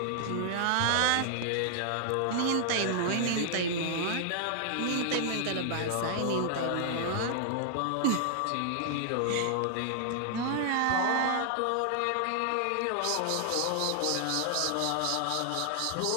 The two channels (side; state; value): both; different; correlation 0.00